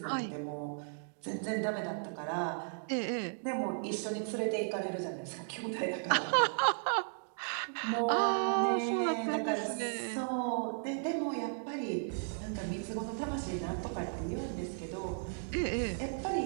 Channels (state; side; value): silent; left; digital silence